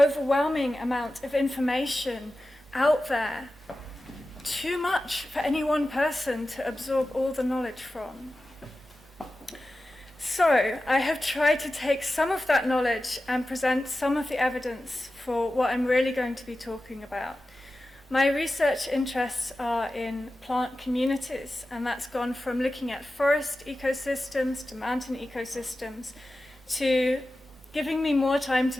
amount of information out there. Too much for any one person to absorb all the knowledge from. So I have tried to take some of that knowledge and present some of the evidence for what I'm really going to be talking about. My research interests are in plant communities, and that's gone from looking at forest ecosystems to mountain ecosystems to giving me more time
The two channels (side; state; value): both; normal; correlation 0.94